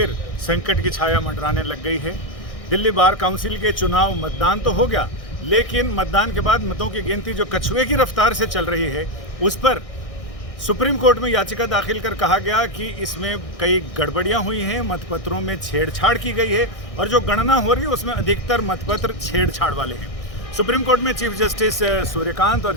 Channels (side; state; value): right; late; 1.6 ms